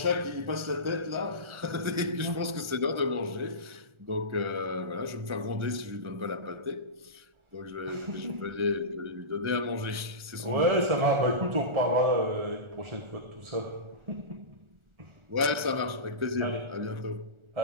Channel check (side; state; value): left; late; 1.4 ms